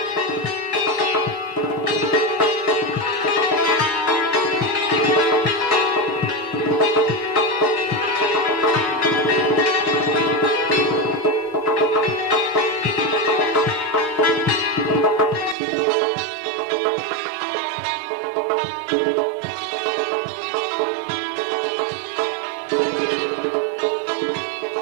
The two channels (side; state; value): left; drops out; at 15.6 s